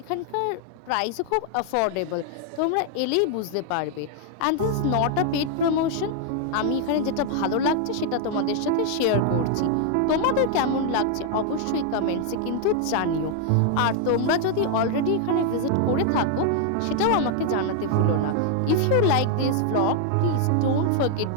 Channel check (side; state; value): both; different; correlation 0.00